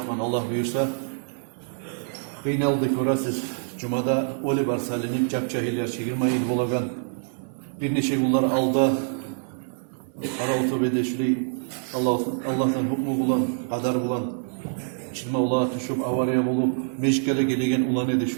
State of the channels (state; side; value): silent; left; 61 dB below the other